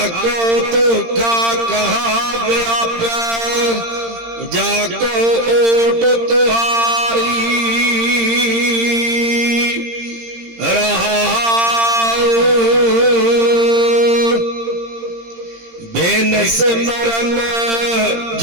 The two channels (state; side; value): late; left; 17 ms